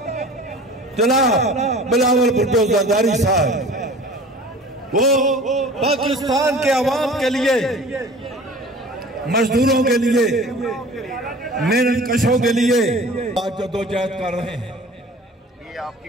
जनाब बिलावल भुट्टो जरदारी साहब वो पाकिस्तान के अवाम के लिए, मजदूरों के लिए, मेहनत कशों के लिए आज जद्दोजहद कर रहे हैं।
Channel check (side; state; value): both; normal; correlation 0.43